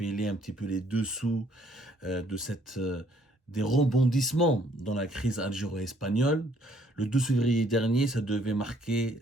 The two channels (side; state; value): both; normal; correlation 0.64